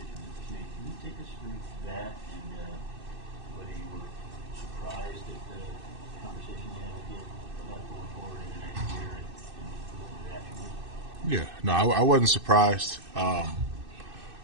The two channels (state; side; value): late; left; 2.6 ms